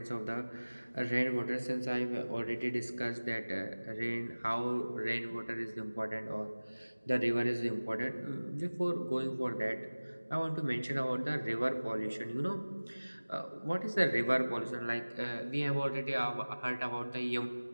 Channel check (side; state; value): both; inverted; correlation -1.00